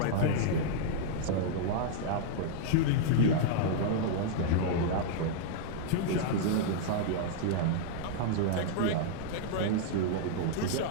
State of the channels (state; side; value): different; both; correlation -0.01